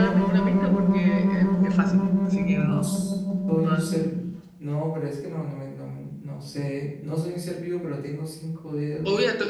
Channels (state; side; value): identical; both; correlation 1.00